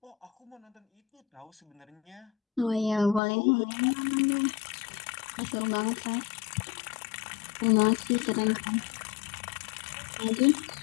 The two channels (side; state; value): right; drops out; at 3.2 s